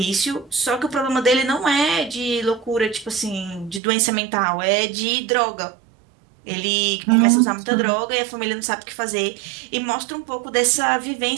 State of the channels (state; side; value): drops out; left; at 3.8 s